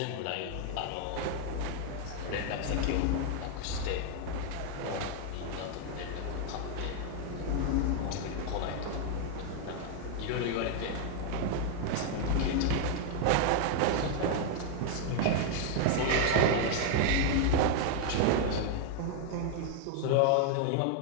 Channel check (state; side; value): different; both; correlation 0.00